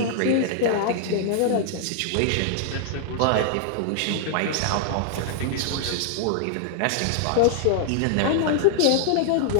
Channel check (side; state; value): both; different; correlation -0.01